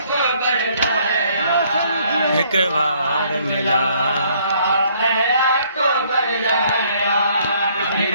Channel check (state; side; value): inverted; both; correlation -0.64